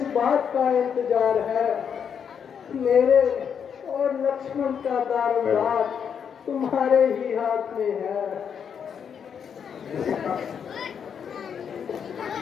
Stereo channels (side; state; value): right; quieter; 7.5 dB